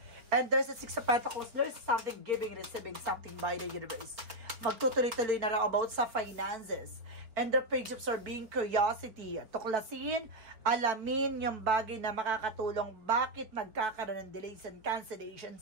And there's a Six of Pentacles. There's something giving, receiving something by the universe. Magtutuloy-tuloy na rin about sa finances. And the Page of Swords being curiosity. Tuklasin, alamin yung bagay na makakatulong bakit nagkakaroon ng delays and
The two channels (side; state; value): left; late; 4.2 ms